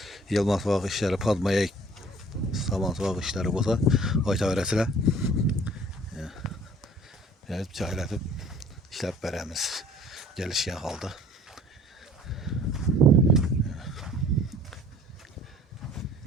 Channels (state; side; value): normal; both; correlation 0.52